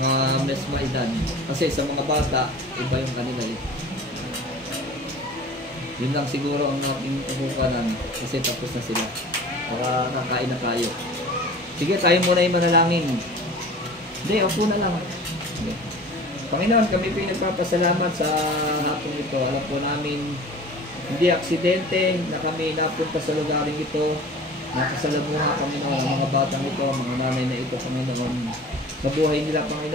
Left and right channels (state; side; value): normal; both; correlation 0.41